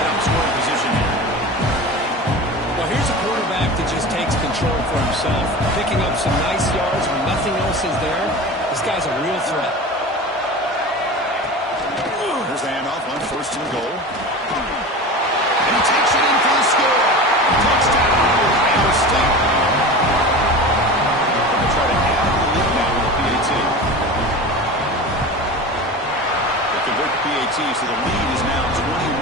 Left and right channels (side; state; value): both; normal; correlation 0.32